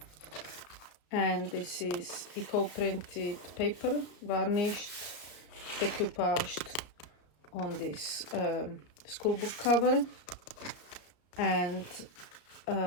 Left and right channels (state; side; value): late; right; 33 ms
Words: And this is eco-printed paper, varnished, decoupaged on this schoolbook cover, and